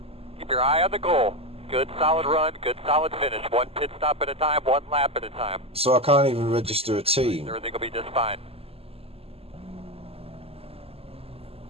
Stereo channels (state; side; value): late; left; 0.29 ms